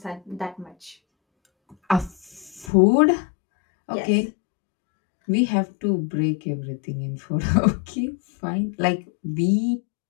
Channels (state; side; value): drops out; right; at 2.7 s